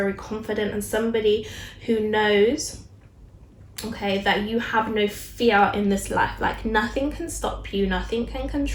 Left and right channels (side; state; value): both; identical; correlation 1.00